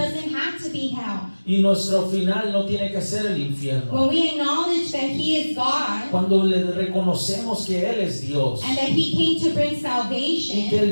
have to be hell. Y nuestro final no tiene que ser el infierno. When we acknowledge that He is God Cuando le reconocemos que Él es Dios and that He came to bring y que salvation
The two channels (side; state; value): both; inverted; correlation -1.00